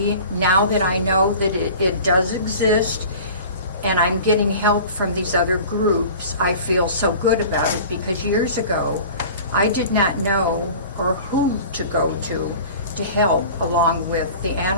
now that I know that it does exist, and I'm getting help from these other groups, I feel so good about it, because years ago, I did not know or who to go to help, along with the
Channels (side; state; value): both; inverted; correlation -0.41